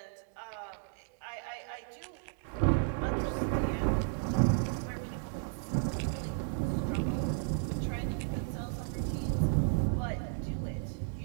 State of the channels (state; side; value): silent; left; digital silence